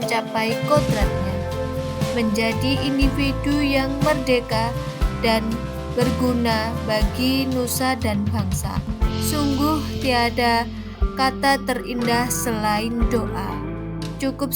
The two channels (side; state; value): both; identical; correlation 1.00